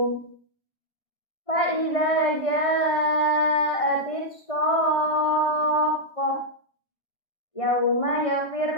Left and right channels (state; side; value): late; right; 1.6 ms